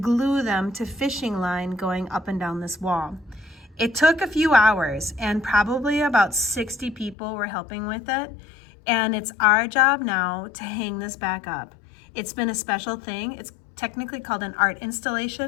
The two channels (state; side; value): drops out; right; at 7.2 s